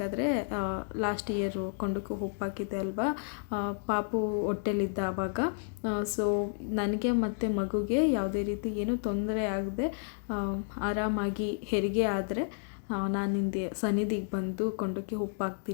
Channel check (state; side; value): silent; right; digital silence